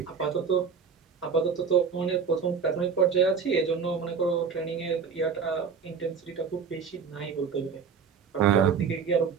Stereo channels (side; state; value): left; quieter; 6.1 dB